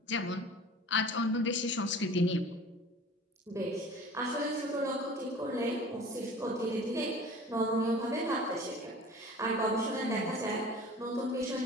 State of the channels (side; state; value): both; normal; correlation 0.43